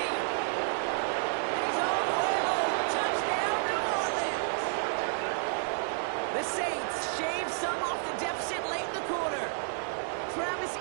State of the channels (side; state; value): left; silent; digital silence